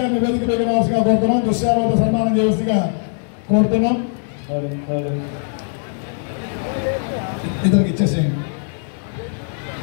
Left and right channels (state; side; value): silent; right; digital silence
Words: గారిని వేదిక మీద రావాల్సిగా కోరుతున్నాం. దుశ్శాలవత సన్మానం చేయవలసిగా కోరుతున్నాం. ఇద్దరికి ఇచ్చేసేయండి.